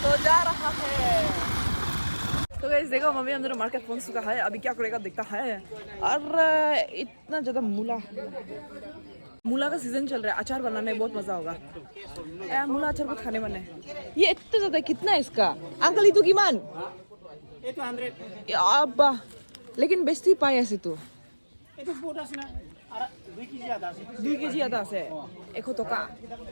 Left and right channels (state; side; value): inverted; both; correlation -1.00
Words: तो जा रहा है। तो गाइस देखो मम्मी हम दोनों मार्केट पहुंच चुका है, अभी क्या करेगा देखता है। और इतना ज़्यादा मूला का सीजन चल रहा है, अचार बनाने में बहुत मज़ा होगा। मूला अचार बहुत खाने वाले हैं। ये इतना ज़्यादा कितना है इसका uncle, itu gimana? 800. Ya apa? लेकिन बेचती पाए ऐसे तो Itu bodas na 2 kg atas. 2 kg atas है एक तो का